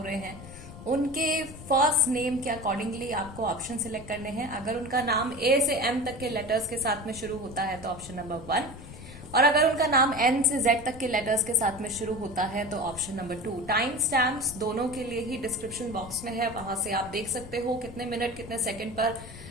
रहे हैं, उनके फर्स्ट नेम के अकॉर्डिंगली आपको ऑप्शन सिलेक्ट करने हैं। अगर उनका नाम ए से एम तक के लेटर्स के साथ में शुरू होता है तो ऑप्शन नंबर 1, और अगर उनका नाम एन से जेड तक के लेटर्स के साथ में शुरू होता है तो ऑप्शन नंबर 2। टाइम स्टैम्प्स दोनों के लिए ही डिस्क्रिप्शन बॉक्स में है, वहां से आप देख सकते हो कितने मिनट कितने सेकंड पर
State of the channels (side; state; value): left; noise; rumble, 16 dB below the sound